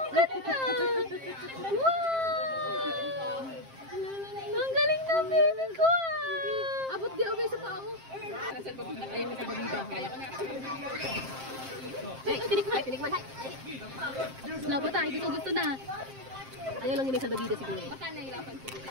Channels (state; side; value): late; left; 7.6 ms